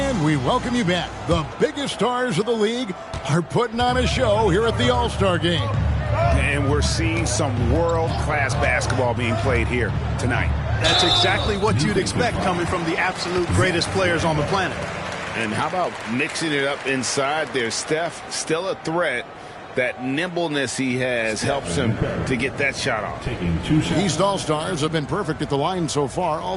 we welcome you back. The biggest stars of the league are putting on a show here at the All-Star game. And we're seeing some world-class basketball being played here tonight. That's exactly what you'd expect coming from the absolute greatest players on the planet. And how about mixing it up inside there? Steph, still a threat. That nimbleness he has helps him to get that shot off. East All-Stars have been perfect at the line so far,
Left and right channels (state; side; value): identical; both; correlation 1.00